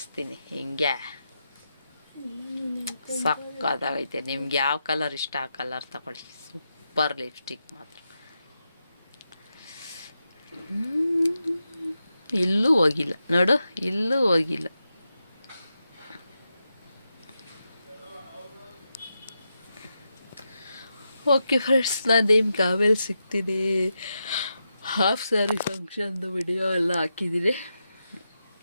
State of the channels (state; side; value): inverted; both; correlation -0.87